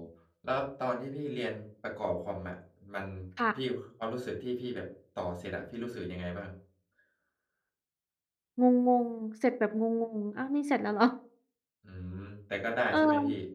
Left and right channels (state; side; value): identical; both; correlation 1.00